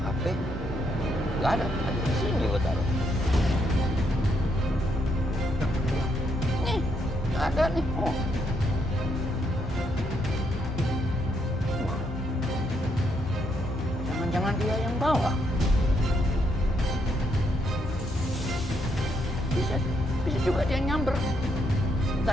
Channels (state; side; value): normal; both; correlation 0.76